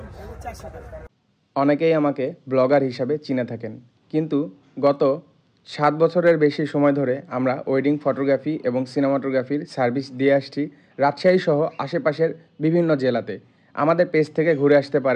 400 টাকা। অনেকেই আমাকে ব্লগার হিসাবে চিনে থাকেন, কিন্তু গত 7 বছরের বেশি সময় ধরে আমরা ওয়েডিং ফটোগ্রাফি এবং সিনেমাটোগ্রাফির সার্ভিস দিয়ে আসছি রাজশাহী সহ আশেপাশের বিভিন্ন জেলাতে। আমাদের পেজ থেকে ঘুরে আসতে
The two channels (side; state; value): both; identical; correlation 1.00